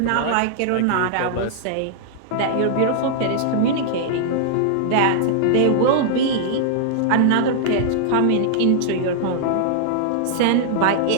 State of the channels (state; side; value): different; both; correlation -0.01